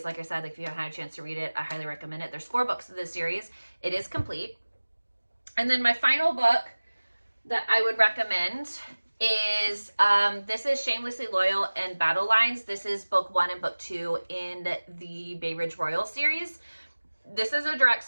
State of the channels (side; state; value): both; inverted; correlation -1.00